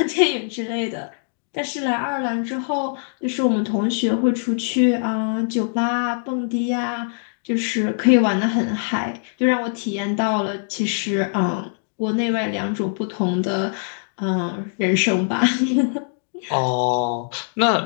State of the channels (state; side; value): silent; right; digital silence